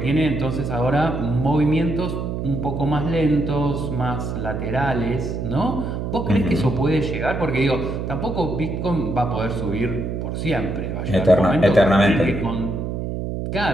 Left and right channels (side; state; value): right; noise; hum, 4 dB below the sound